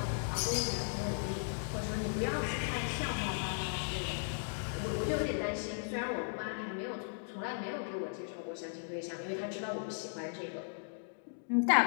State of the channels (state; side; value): silent; right; digital silence